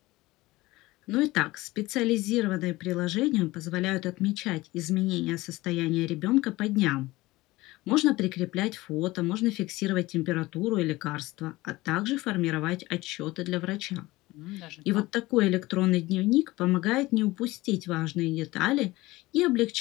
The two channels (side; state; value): right; quieter; 19.6 dB